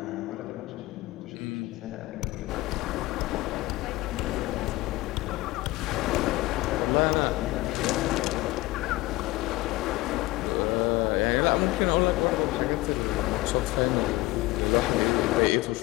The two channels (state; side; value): quieter; right; 19.8 dB